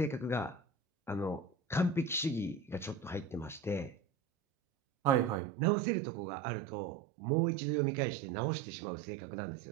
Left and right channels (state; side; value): drops out; left; at 5.4 s